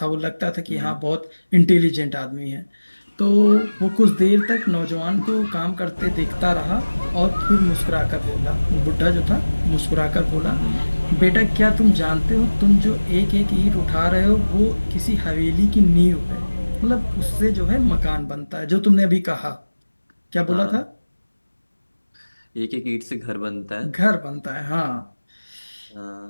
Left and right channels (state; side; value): inverted; both; correlation -1.00